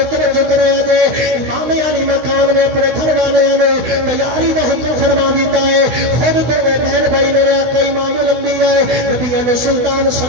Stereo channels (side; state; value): left; late; 16 ms